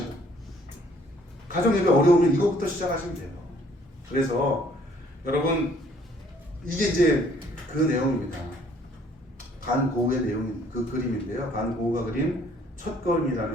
가정 예배 어려우면 이거부터 시작하시면 돼요. 그래서 여러분 이게 이제 그 내용입니다. 반고우의 내용 그 그림인데요. 반고우가 그린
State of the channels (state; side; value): normal; both; correlation 0.61